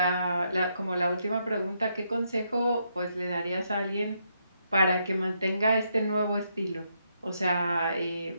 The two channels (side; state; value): both; inverted; correlation -0.78